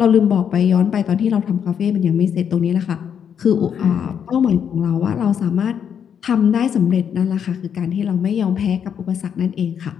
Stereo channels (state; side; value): quieter; right; 8.0 dB